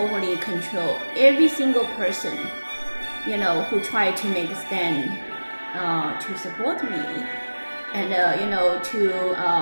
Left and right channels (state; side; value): inverted; both; correlation -1.00